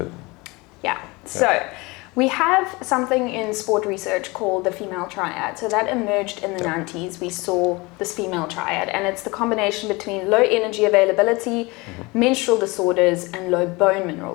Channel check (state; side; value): quieter; right; 24.6 dB